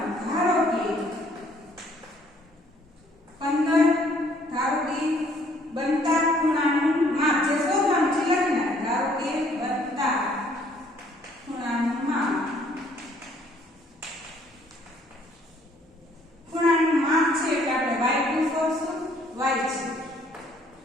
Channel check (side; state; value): both; normal; correlation 0.62